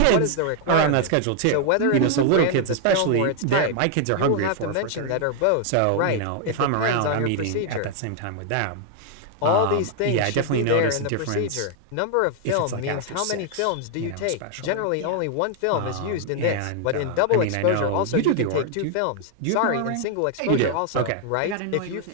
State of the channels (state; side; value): different; both; correlation 0.00